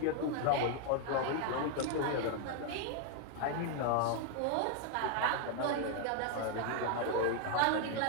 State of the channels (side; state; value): both; different; correlation 0.00